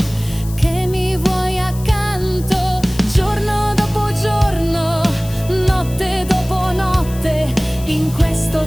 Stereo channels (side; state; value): left; noise; hiss, 17 dB below the sound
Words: accanto. Giorno dopo giorno, notte dopo notte, in